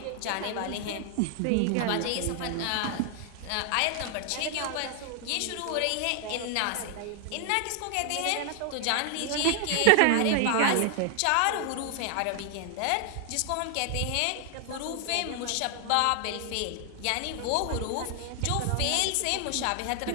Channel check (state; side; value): different; both; correlation 0.00